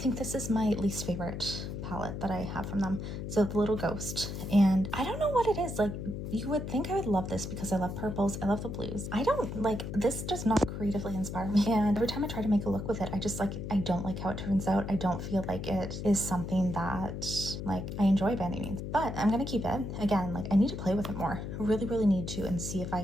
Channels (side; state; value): left; noise; hum, 6 dB below the sound